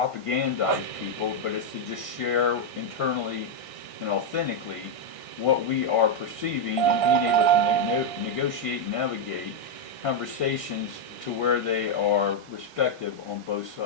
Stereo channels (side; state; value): right; late; 1.6 ms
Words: people, but it's to just share internally and authentically what we are perceiving and being able to negotiate and navigate conversations to where they are respective on both